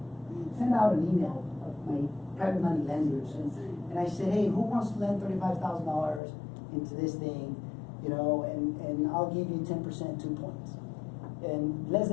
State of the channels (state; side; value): drops out; right; at 6.2 s